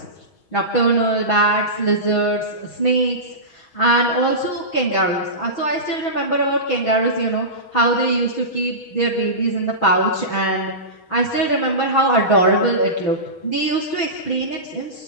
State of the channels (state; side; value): late; right; 6.3 ms